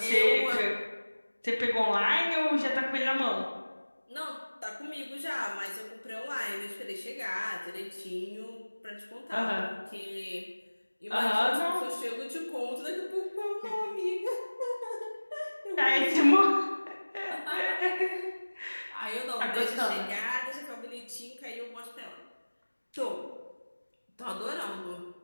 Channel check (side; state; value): both; inverted; correlation -1.00